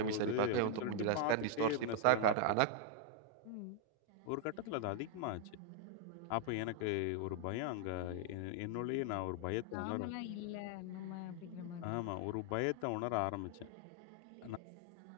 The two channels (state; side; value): different; both; correlation 0.00